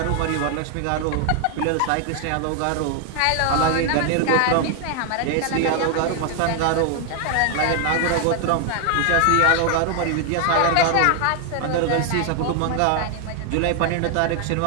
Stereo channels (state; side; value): different; both; correlation 0.00